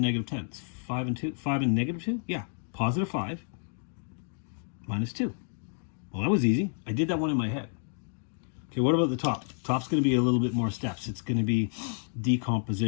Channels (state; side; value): silent; right; 58 dB below the other